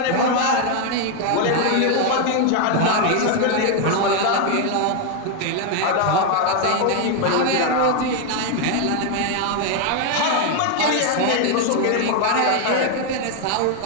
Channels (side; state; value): both; different; correlation 0.01